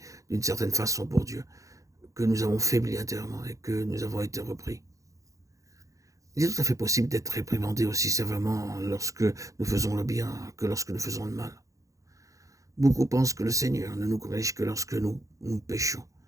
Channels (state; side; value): late; left; 0.16 ms